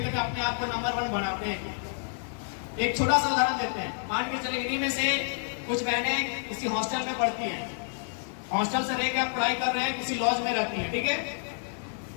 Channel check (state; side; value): silent; right; 59 dB below the other